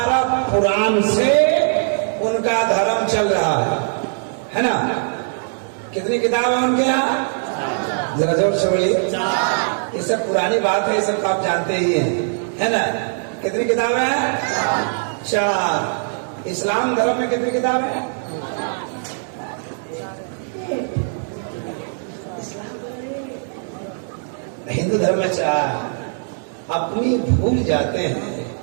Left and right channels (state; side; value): silent; left; digital silence